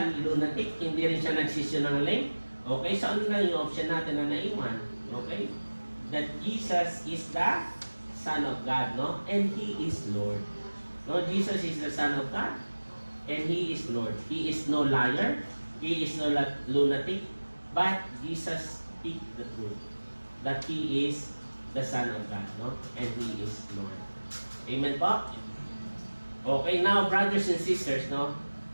lunatic, hindi rin siya nagsisinungaling, okay, so ano na yung option natin na naiwan? Okay? That Jesus is the Son of God, no? And He is Lord. No, Jesus is the Son of God, and He is Lord. He is no liar, He is no lunatic, but Jesus speaks the truth, that He is the Son of God, no? And He is Lord. Amen po? Okay, now brothers and sisters, no?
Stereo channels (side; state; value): both; inverted; correlation -1.00